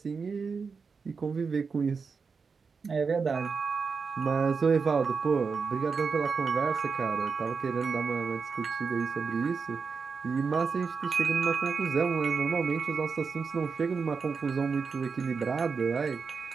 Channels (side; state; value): left; quieter; 5.2 dB